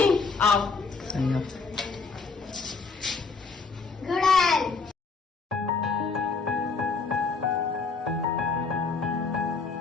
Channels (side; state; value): right; quieter; 4.5 dB